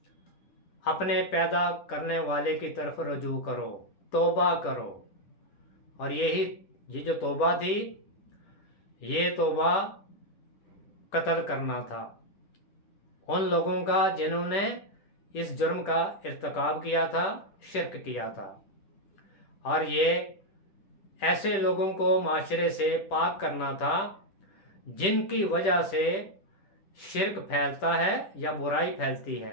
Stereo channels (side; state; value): right; late; 10 ms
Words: اپنے پیدا کرنے والے کی طرف رجوع کرو، توبہ کرو۔ اور یہ جو توبہ تھی، یہ توبہ قتل کرنا تھا ان لوگوں کا جنہوں نے اس جرم کا ارتکاب کیا تھا، شرک کیا تھا۔ اور یہ ایسے لوگوں کو معاشرے سے پاک کرنا تھا جن کی وجہ سے شرک پھیلتا ہے یا برائی پھیلتی